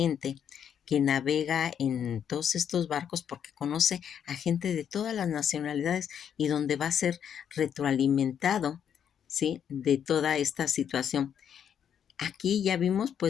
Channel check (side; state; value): right; quieter; 8.6 dB